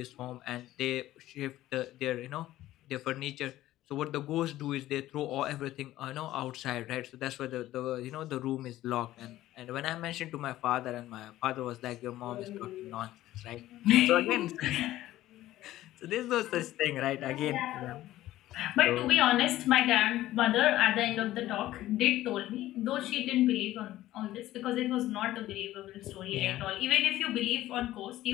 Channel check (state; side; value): quieter; right; 14.9 dB